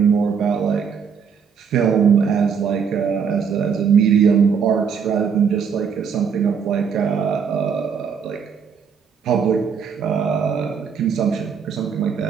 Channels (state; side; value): quieter; left; 6.6 dB